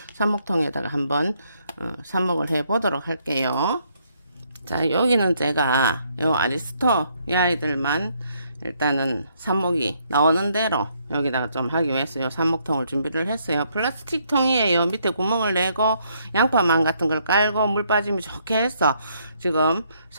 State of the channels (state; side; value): inverted; both; correlation -0.71